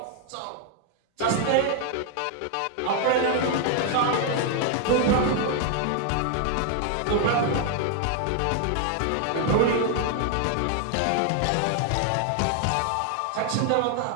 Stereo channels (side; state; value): both; different; correlation 0.00